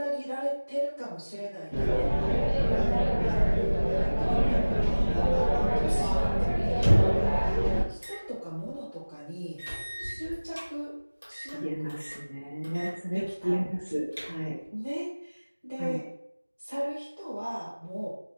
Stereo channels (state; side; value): inverted; both; correlation -1.00